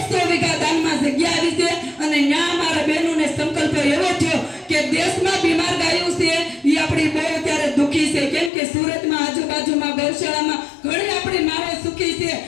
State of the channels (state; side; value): drops out; right; at 8.5 s